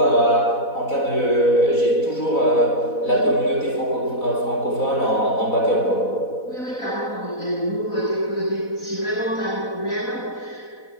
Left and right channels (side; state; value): right; late; 4.1 ms